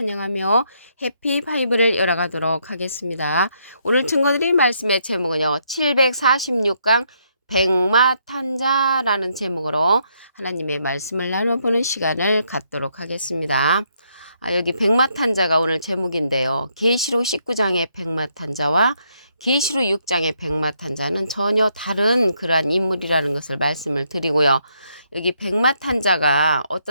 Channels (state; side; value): inverted; both; correlation -0.74